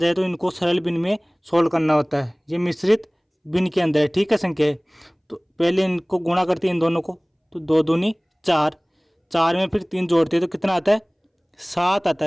तो इनको सरल भिन्न में सोल्व करना होता है। ये मिश्रित भिन्न के अंदर है। ठीक है, संख्या है, तो पहले इनको गुणा करते हैं इन दोनों को, तो 2 दूनी 4, 4 में फिर 3 जोड़ते हैं तो कितना आता है, 7 आता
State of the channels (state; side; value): identical; both; correlation 1.00